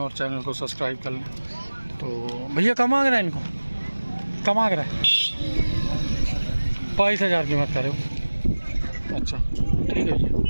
चैनल को सब्सक्राइब कर लें। तो भैया कम मांग रहा है, इनको कम मांग रहा है 22,000 कीमत करे हो। अच्छा ठीक है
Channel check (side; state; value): both; inverted; correlation -1.00